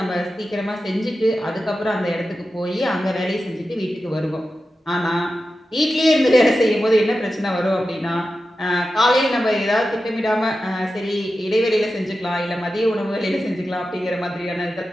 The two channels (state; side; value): normal; both; correlation 0.92